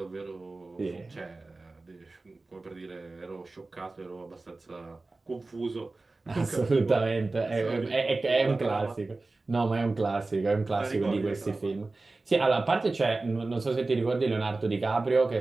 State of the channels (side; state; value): left; quieter; 3.4 dB